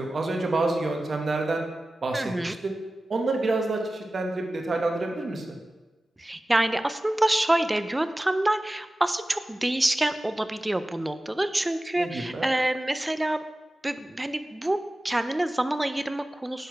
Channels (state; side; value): normal; both; correlation 0.96